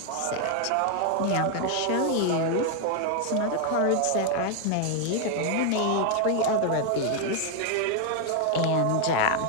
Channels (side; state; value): both; different; correlation 0.00